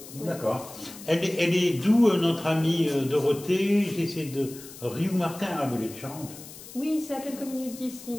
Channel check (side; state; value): left; noise; hiss, 16 dB below the sound